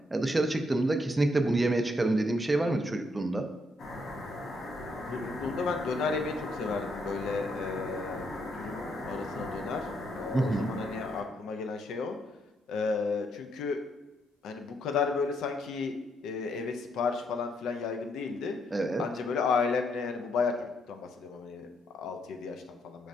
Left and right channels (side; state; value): both; normal; correlation 0.75